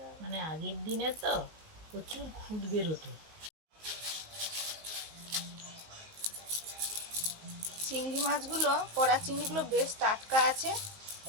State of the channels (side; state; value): left; late; 19 ms